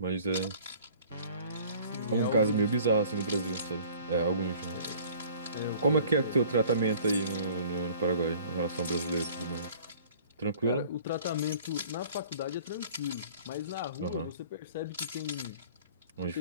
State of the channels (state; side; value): inverted; both; correlation -0.51